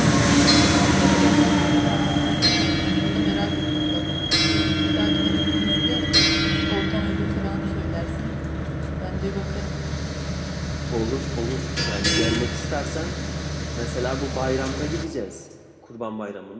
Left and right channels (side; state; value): both; identical; correlation 1.00